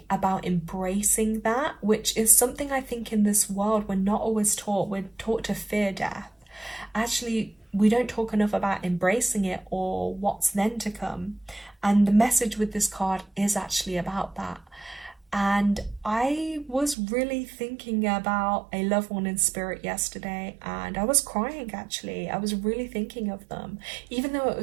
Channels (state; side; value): drops out; left; at 16.9 s